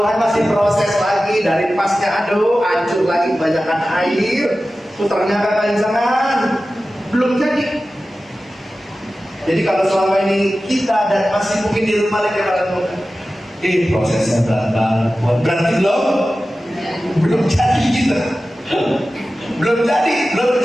masih proses lagi dari pasnya aduk, hancur lagi kebanyakan air. Putarnya kepanjangan, belum jadi. Jadi kalau selama ini kita dan masih mungkin di rumah lagi prosesnya berat, berarti belum jadi kita. Belum jadi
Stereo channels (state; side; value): normal; both; correlation 0.95